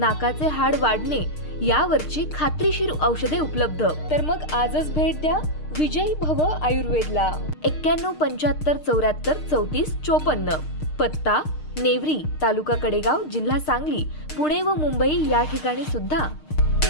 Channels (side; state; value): right; late; 6.5 ms